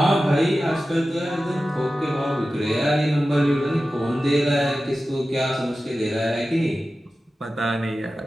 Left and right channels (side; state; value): both; normal; correlation 0.94